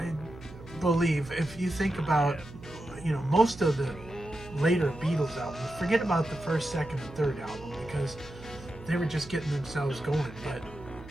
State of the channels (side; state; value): right; noise; hum, 17 dB below the sound